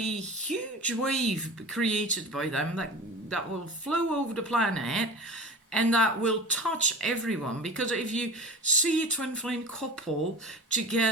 wave created by them that will flow over the planet and that will touch everyone. Because if you see a twin flame couple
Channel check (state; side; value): normal; both; correlation 0.33